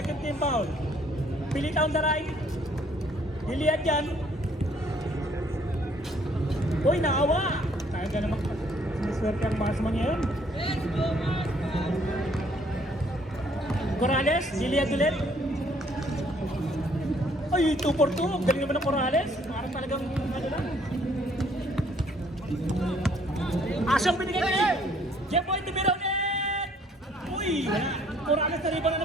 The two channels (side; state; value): both; normal; correlation 0.63